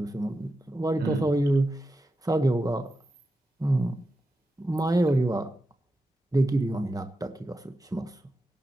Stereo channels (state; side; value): normal; both; correlation 0.90